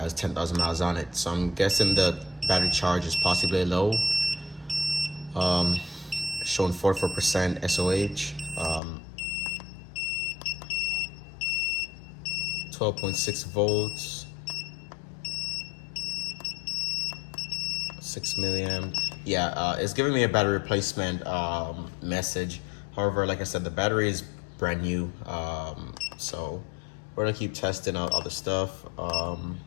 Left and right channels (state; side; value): drops out; right; at 8.8 s